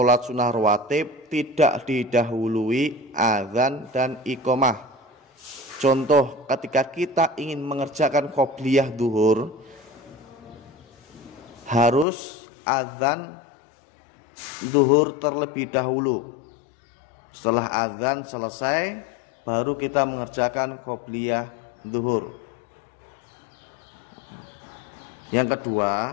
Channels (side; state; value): right; drops out; at 12.1 s